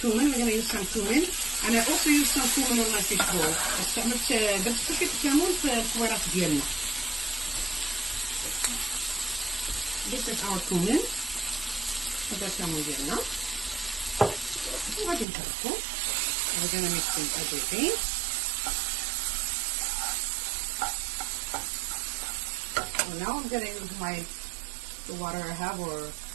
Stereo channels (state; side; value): drops out; left; at 15.2 s